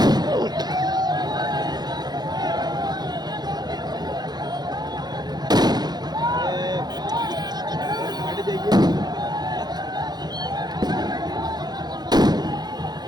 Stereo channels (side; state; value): left; late; 0.20 ms